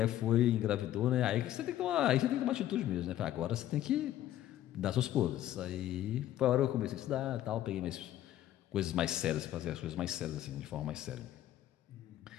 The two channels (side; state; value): right; quieter; 12.9 dB